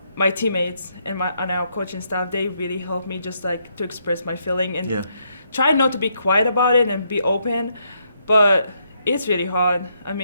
my teammates and our coaching staff, they really helped me just like to express my feeling and try not to be quiet about it and be open. But it's really hard. I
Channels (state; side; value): inverted; both; correlation -0.76